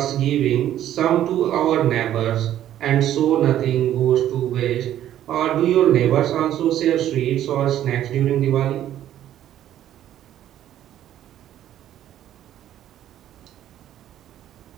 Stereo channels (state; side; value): quieter; left; 11.8 dB